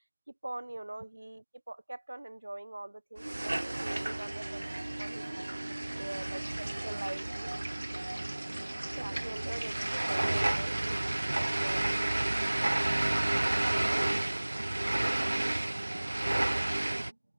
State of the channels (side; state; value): both; inverted; correlation -1.00